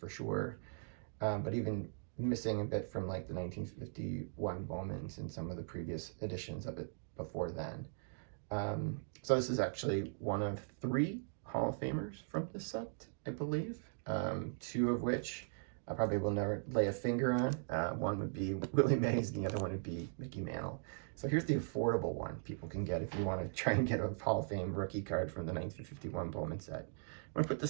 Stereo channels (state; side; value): silent; left; digital silence